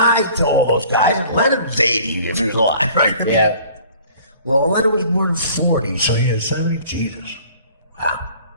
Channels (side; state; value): both; inverted; correlation -0.51